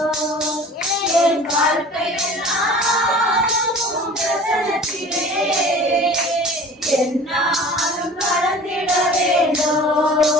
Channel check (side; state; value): both; normal; correlation 0.43